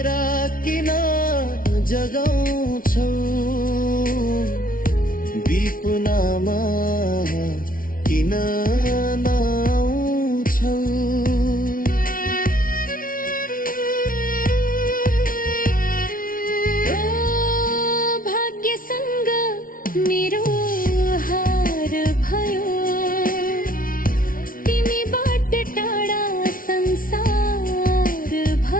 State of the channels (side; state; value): right; late; 0.41 ms